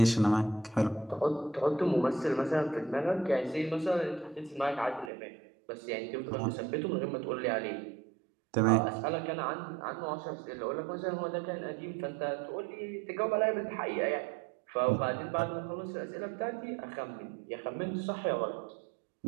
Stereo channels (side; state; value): left; drops out; at 5.1 s